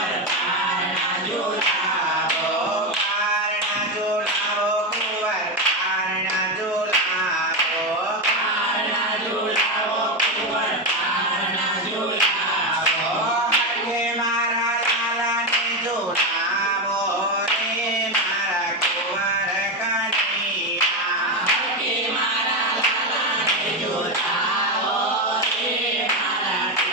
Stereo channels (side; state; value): both; normal; correlation 0.12